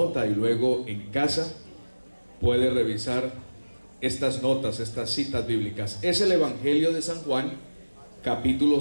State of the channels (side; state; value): both; inverted; correlation -1.00